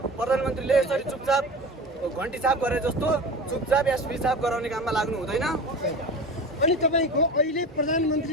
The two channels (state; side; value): normal; both; correlation 0.32